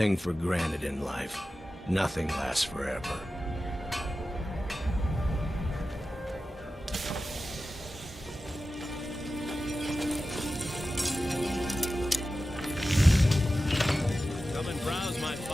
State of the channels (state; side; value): normal; both; correlation 0.93